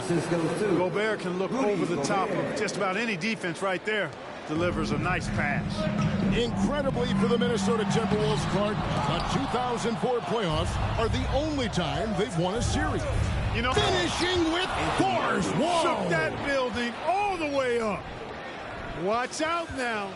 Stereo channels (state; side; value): identical; both; correlation 1.00